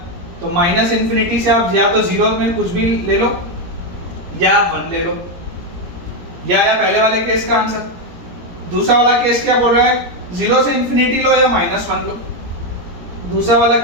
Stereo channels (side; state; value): left; late; 17 ms